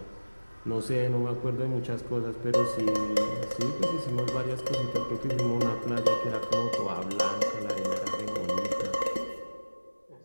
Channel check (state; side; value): inverted; both; correlation -1.00